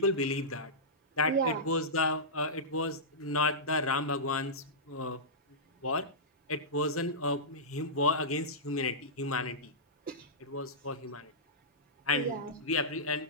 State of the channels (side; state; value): both; normal; correlation -0.15